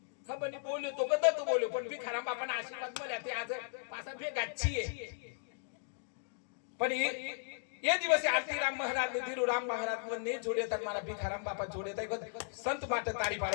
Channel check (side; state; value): right; silent; digital silence